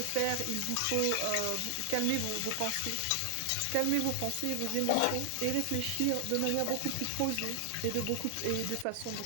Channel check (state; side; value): different; both; correlation 0.00